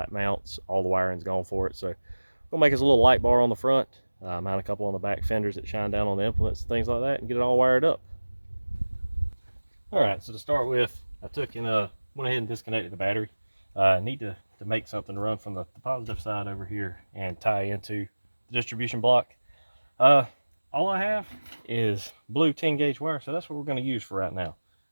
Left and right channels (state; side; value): inverted; both; correlation -1.00